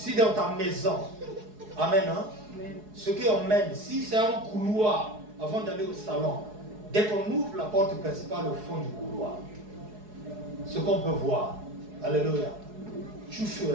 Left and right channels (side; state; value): left; late; 4.7 ms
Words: dans ta maison, amen, hein, ce qu'on mène, si c'est un couloir, avant d'aller au salon, dès qu'on ouvre la porte principale au fond du couloir, ce qu'on peut voir, alléluia, tu